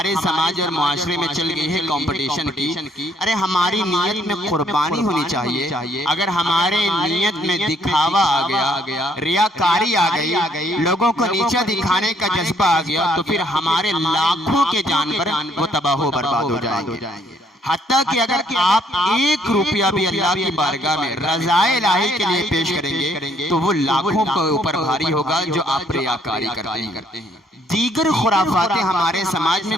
سماج اور معاشرے میں چل گئی ہے کمپٹیشن کی۔ ارے ہماری نیت میں قربانی ہونی چاہیے، اگر ہمارے نیت میں دکھاوا آ گیا، ریاکاری آ گئی، لوگوں کو نیچا دکھانے کا جذبہ آ گیا، تو پھر ہمارے لاکھوں کے جانور وہ تباہ و برباد ہو جائیں گے۔ حتیٰ کہ اگر آپ 1 روپیہ بھی اللہ کی بارگاہ میں رضائے الہی کے لیے پیش کریں گے تو وہ لاکھوں کے اوپر بھاری ہوگا جو آپ ریاکاری کرتے ہیں۔ دیگر خرافات ہمارے سماج میں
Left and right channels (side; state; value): both; normal; correlation 0.67